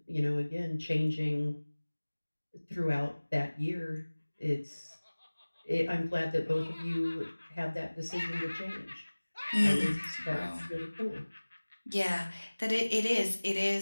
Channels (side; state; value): both; inverted; correlation -1.00